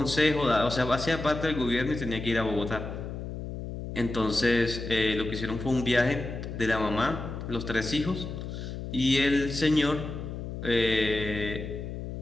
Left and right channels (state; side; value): noise; left; hum, 7 dB below the sound